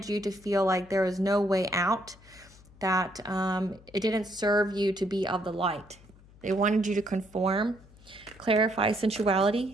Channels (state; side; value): noise; left; hum, 24 dB below the sound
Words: you to feel like there was no way out, that it didn't serve you to be of the light. They wanted you to conform. Clarify